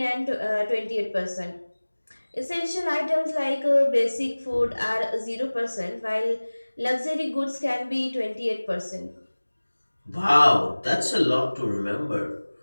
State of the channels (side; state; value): both; inverted; correlation -1.00